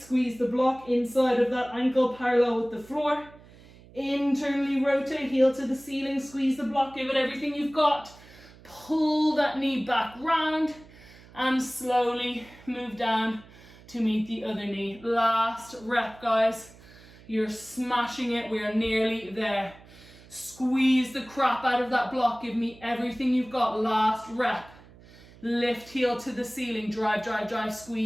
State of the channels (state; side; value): noise; right; hum, 22 dB below the sound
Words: squeeze the block inside of that ankle parallel with the floor. Internally rotate, heel to the ceiling, squeeze the block, give it everything you've got. Pull that knee back round and slowly move down to meet the other knee. Last rep, guys. You're smashing it. We are nearly there. Squeeze the crap out of that block. Give me everything you've got. Last rep. Lift heel to the ceiling, drive, drive, drive,